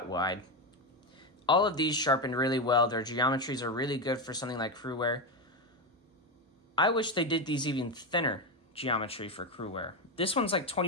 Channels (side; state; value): both; normal; correlation 0.11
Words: wide. All of these sharpened really well. Their geometries are really good for something like Cruwear. I wish they did these even thinner geometry for Cruwear. This one's like